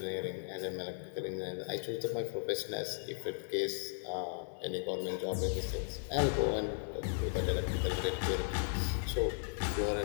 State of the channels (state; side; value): silent; right; digital silence